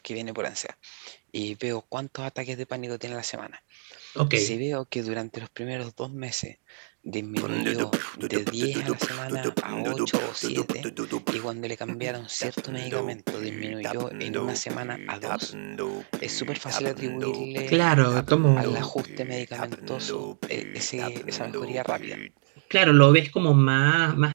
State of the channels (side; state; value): left; silent; digital silence